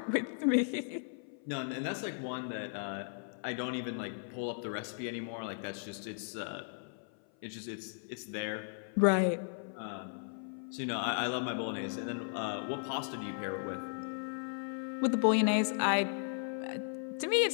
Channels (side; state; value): right; silent; 54 dB below the other